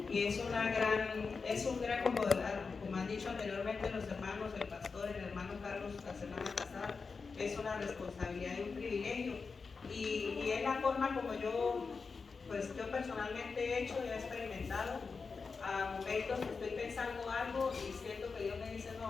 Y es un gran, como han dicho anteriormente los hermanos, el pastor, el hermano Carlos la semana pasada, es una responsabilidad y un privilegio. Y es la forma como yo personalmente he hecho y he experimentado. A momentos estoy pensando algo y siento que Dios me dice,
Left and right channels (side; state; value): right; quieter; 4.8 dB